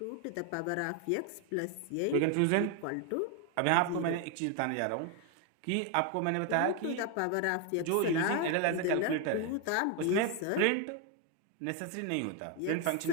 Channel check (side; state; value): both; different; correlation 0.01